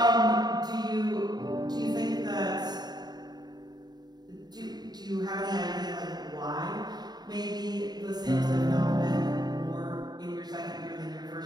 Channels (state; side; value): late; left; 0.20 ms